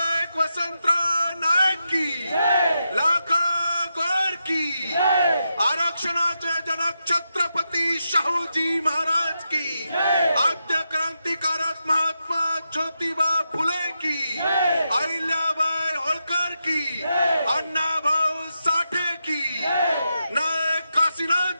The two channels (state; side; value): inverted; both; correlation -0.86